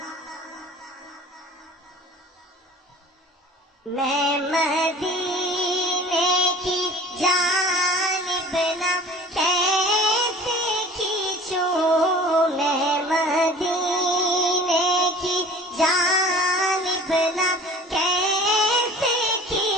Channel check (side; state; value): both; normal; correlation 0.45